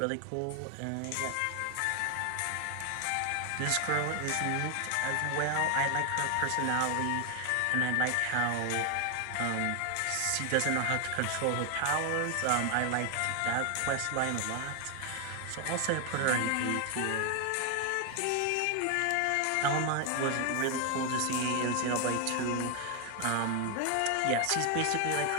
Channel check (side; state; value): both; different; correlation 0.00